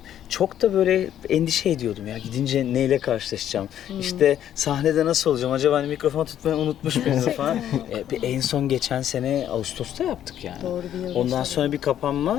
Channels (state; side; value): quieter; right; 10.7 dB